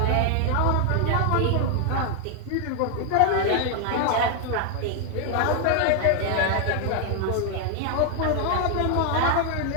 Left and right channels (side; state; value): both; different; correlation 0.01